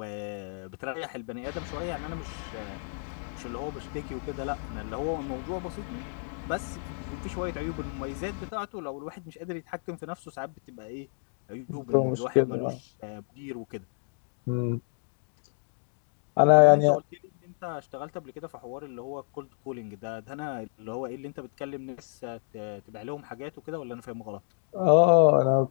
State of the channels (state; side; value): silent; right; digital silence